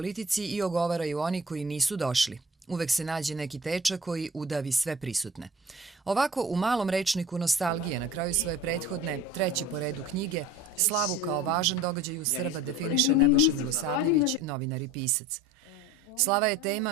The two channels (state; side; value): normal; both; correlation 0.42